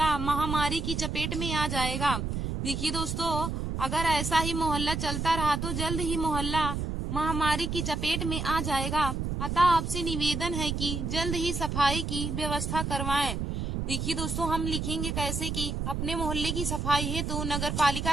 महामारी की चपेट में आ जाएगा। देखिए दोस्तों, अगर ऐसा ही मोहल्ला चलता रहा तो जल्द ही मोहल्ला महामारी की चपेट में आ जाएगा। अतः आपसे निवेदन है कि जल्द ही सफाई की व्यवस्था करवाएं। देखिए दोस्तों, हम लिखेंगे कैसे कि अपने मोहल्ले की सफाई है तो नगर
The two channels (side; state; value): right; noise; rumble, 2 dB below the sound